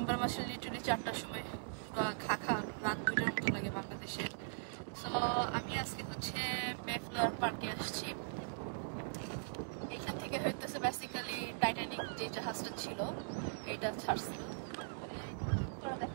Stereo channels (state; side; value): silent; left; digital silence